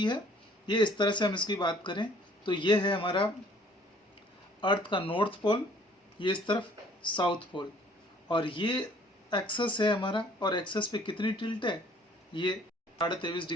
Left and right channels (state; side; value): normal; both; correlation 0.57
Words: है, ये इस तरह से हम इसकी बात करें तो ये है हमारा अर्थ का नॉर्थ पोल, ये इस तरफ साउथ पोल, और ये एक्सेस है हमारा, और एक्सेस पे कितनी टिल्ट है? ये 23.5